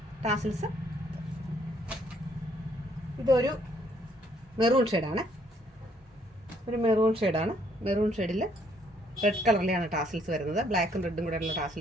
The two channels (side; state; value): both; normal; correlation 0.67